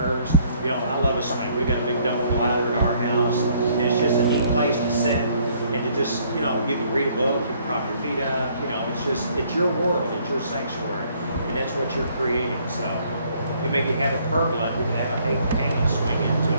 You know, I love a swing. We got a big double glider in our house. And it's just a neat place to sit and to just, you know, you can read a book, you can prop your feet up, you know, it's your world, it's your sanctuary, and that's what you're creating. So you maybe have a pergola, you can have a hanging swing into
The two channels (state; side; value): inverted; both; correlation -0.64